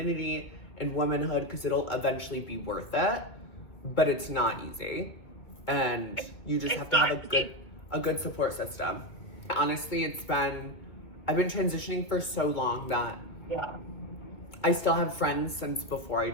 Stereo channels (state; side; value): late; right; 2.2 ms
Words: and womanhood, because it'll eventually be worth it, but it's not easy. And you just have to have a good support system. Honestly, I've been transitioning for so long that I still have friends since before I